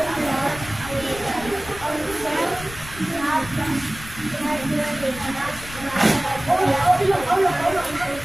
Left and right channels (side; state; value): left; noise; rumble, 15 dB below the sound